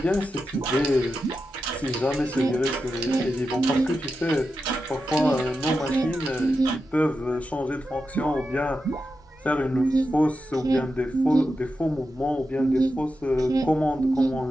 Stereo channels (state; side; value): normal; both; correlation 0.89